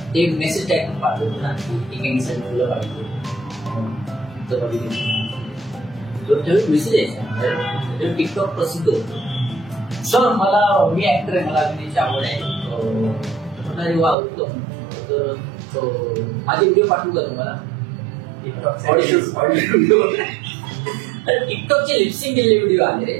एक मेसेज टाईप पाठवतो ना की एकासाठी मुलं पाहिजे. त्यावेळी मेसेज यायचा, टिकटॉक प्रसिद्ध होतो. सर मी ऍक्टर आहे, मला अभिनयाची आवड आहे. वा उत्तम, तर माझे व्हिडिओ पाठवू का तुम्हाला? टिकटॉकचे लिपसिंग केलेले व्हिडिओ आले,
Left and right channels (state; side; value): drops out; left; at 14.2 s